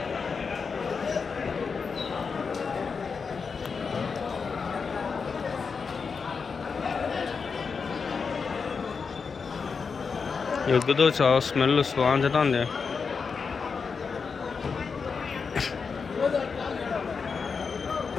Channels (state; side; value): quieter; right; 5.4 dB